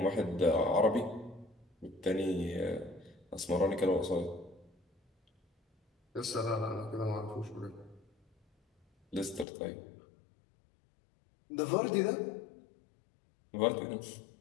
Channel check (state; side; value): drops out; right; at 9.5 s